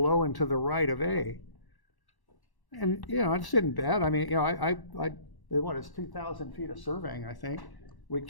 and to the right of A. And, it's isn't bad. I mean, it's 2,000 feet of surveying, I think. We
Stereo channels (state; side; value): late; right; 1.1 ms